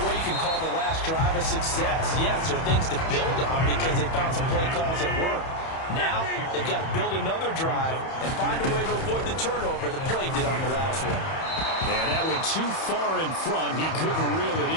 way you can call the last drive a success. Yes, there are things to build on because they found some play calls that work. Now, they've got to build another drive and find a way to avoid the turnover the play did on the last one. And that went too far in front. He couldn't reel it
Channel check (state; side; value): late; right; 31 ms